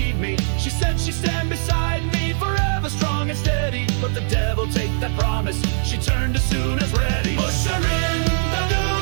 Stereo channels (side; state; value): left; silent; digital silence